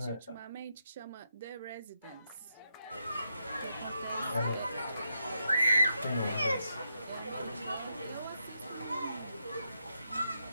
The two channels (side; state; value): both; inverted; correlation -0.81